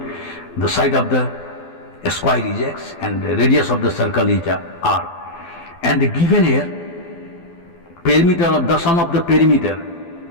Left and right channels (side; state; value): right; late; 12 ms